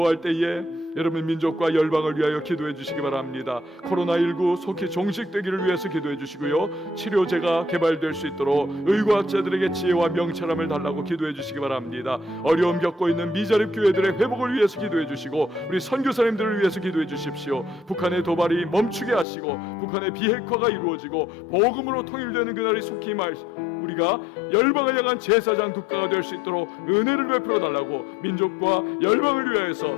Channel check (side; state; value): right; drops out; at 19.2 s